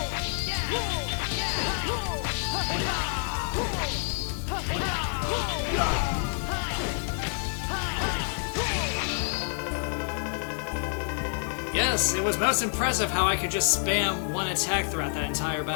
Yes, it was most impressive how I could just spam one attack throughout that entire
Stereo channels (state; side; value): silent; right; 56 dB below the other